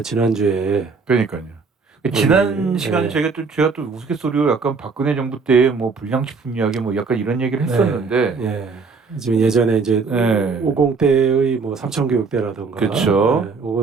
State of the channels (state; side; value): quieter; left; 4.7 dB